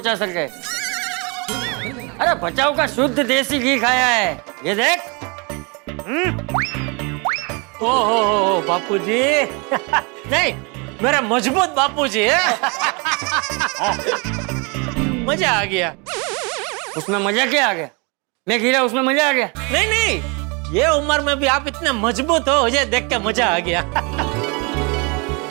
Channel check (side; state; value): left; quieter; 31.2 dB